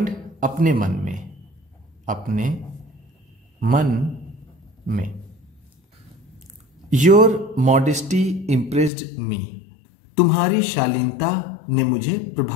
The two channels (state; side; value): drops out; right; at 8.9 s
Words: अपने मन में, अपने मन में। योर मॉडेस्टी इम्प्रेस्ड मी, तुम्हारी शालीनता ने मुझे